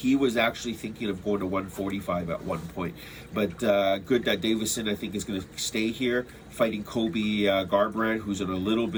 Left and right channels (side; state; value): both; identical; correlation 1.00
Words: was actually thinking of going to 145 at one point. But good that Davison, I think, is going to stay here fighting Kobe Garbrandt, who's in a little